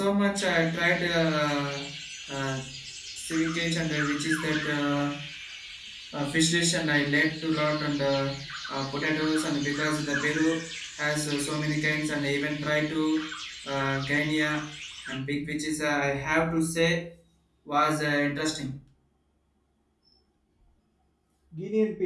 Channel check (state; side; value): identical; both; correlation 1.00